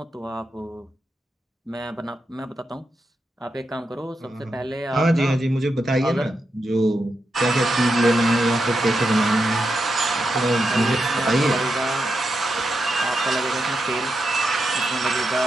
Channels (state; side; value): normal; both; correlation 0.86